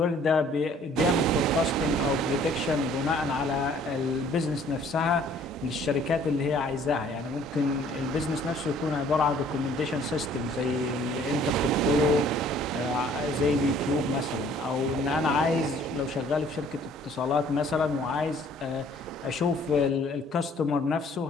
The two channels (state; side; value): normal; both; correlation 0.57